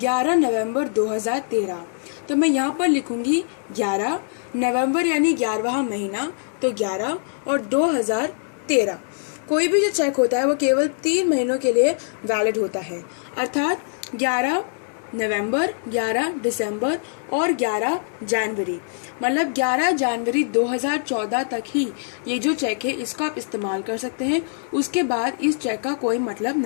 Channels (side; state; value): right; silent; digital silence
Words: नवंबर 2013, तो मैं यहाँ पर लिखूंगी 11 नवंबर यानी 11वां महीना, तो 11 और 2013। कोई भी जो चेक होता है वो केवल 3 महीनों के लिए वैलिड होता है, अर्थात 11 नवंबर, 11 दिसंबर और 11 जनवरी, मतलब 11 जनवरी 2014 तक ही ये जो चेक है इसका आप इस्तेमाल कर सकते हैं। उसके बाद इस चेक का कोई मतलब